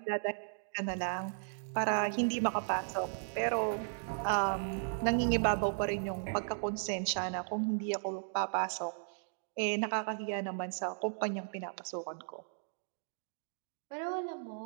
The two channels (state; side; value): silent; left; digital silence